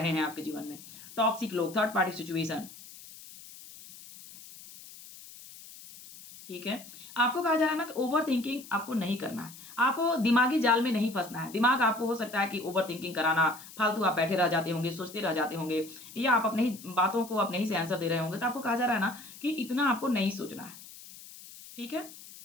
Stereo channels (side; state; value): left; noise; hiss, 17 dB below the sound